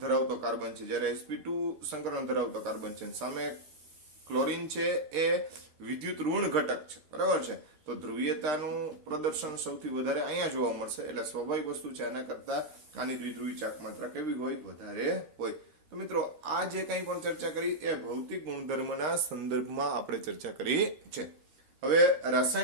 ધરાવતો કાર્બન છે, જ્યારે sp2 સંકરણ ધરાવતો કાર્બન છે. સામે ક્લોરીન છે એ વિદ્યુત ઋણ ઘટક છે. બરાબર છે. તો ધ્રુવીયતાનું પ્રદર્શન સૌથી વધારે અહીંયા જોવા મળશે. એટલે સ્વાભાવિક વસ્તુ છે આના કરતા આની દ્વિધ્રુવી ચાક માત્રા કેવી હોય? વધારે હોય. તો મિત્રો આ જે કંઈ પણ ચર્ચા કરી એ ભૌતિક ગુણધર્મના સંદર્ભમાં આપણે ચર્ચા કરી છે. હવે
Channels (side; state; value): left; late; 13 ms